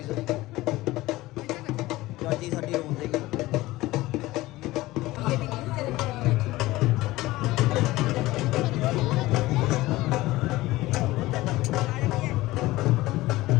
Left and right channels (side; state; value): right; quieter; 18.4 dB